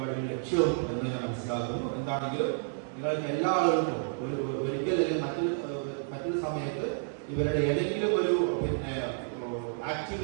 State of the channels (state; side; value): silent; left; digital silence